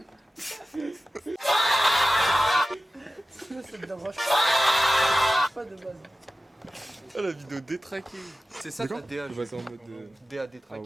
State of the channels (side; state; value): both; normal; correlation 0.94